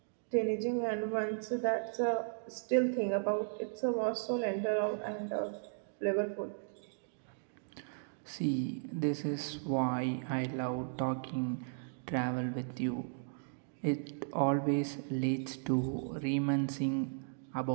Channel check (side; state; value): left; silent; digital silence